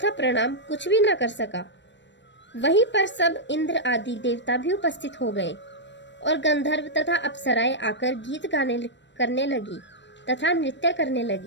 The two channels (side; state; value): right; late; 0.53 ms